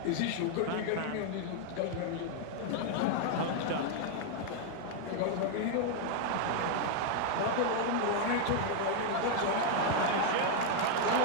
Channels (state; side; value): different; both; correlation 0.00